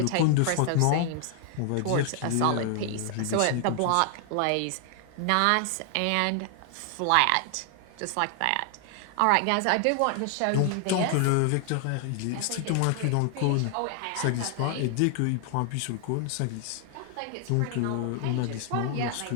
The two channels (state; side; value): different; both; correlation 0.00